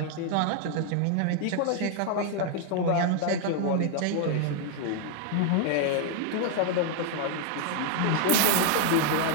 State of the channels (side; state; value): both; different; correlation 0.00